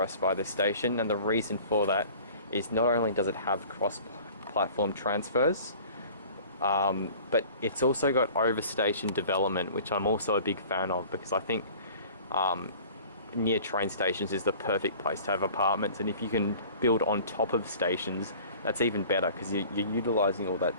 by this station, and the reason for that is not only does it have cross-platform transfers, but it's also got overstation development, which I'm also a big fan of, because I think near train stations is the perfect place to have apartments, and if you can build on top of stations, that's even better, because you're utilising all that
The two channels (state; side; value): inverted; both; correlation -0.46